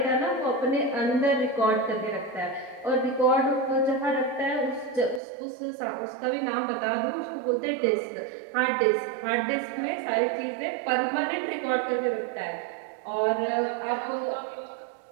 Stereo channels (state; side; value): drops out; left; at 5.2 s